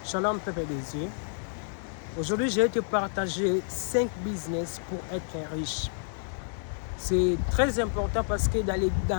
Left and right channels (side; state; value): right; silent; 58 dB below the other